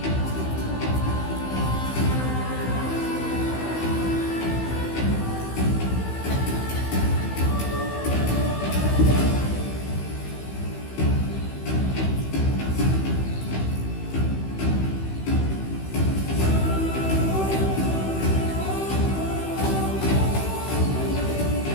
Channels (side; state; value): right; late; 16 ms